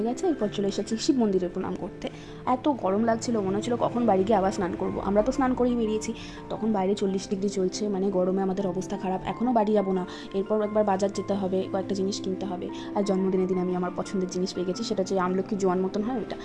গেছে, এরপর চলে এসেছি শিব মন্দিরে প্রণাম করতে। এত গরম লাগছিল, মনে হচ্ছিল কখন বাড়ি গিয়ে আবার স্নান করবো। আমরা তো স্নান করেই বেরিয়েছি, তখন বাইরে 40 ডিগ্রি চলছে, মানে গরমে আমাদের অবস্থা খারাপ। এখনও বাড়ি যাবো না, এরপর একবার বাজার যেতে হবে, কয়েকটা জিনিস কিনতে হবে। আর জন্মদিনের দিন আমি আমার পছন্দের জিনিস পেয়ে গেছি, সেটা হচ্ছে আমলকি জোয়ান মতন হয় ওইটা।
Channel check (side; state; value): both; identical; correlation 1.00